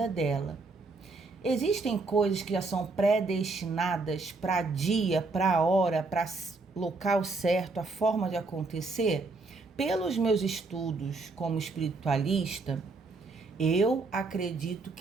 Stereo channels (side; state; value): left; quieter; 3.7 dB